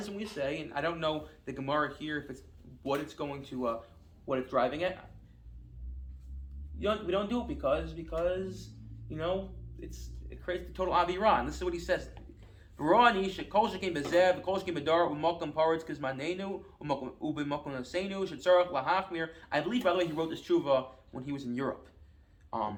when we say, and I don't know the Gemara here if it's what it's going to. What it's driving at. We don't do it because it creates the total avira. And this is what he says. I believe, by the way, he wrote this tshuva when he was in Europe,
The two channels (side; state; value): both; identical; correlation 1.00